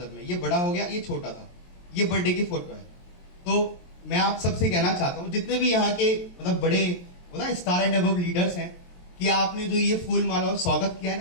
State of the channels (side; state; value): right; late; 23 ms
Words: मैं, ये बड़ा हो गया, ये छोटा था, ये बर्थडे की फोटो है। तो मैं आप सबसे कहना चाहता हूँ, जितने भी यहाँ के मतलब बड़े स्टार एंड अबव लीडर्स हैं, कि आपने जो ये फूल माला और स्वागत किया